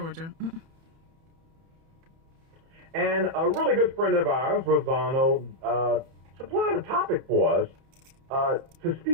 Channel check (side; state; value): left; late; 30 ms